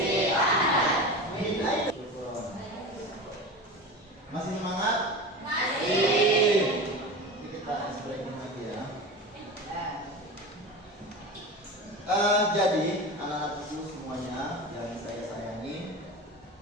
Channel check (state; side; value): normal; both; correlation 0.29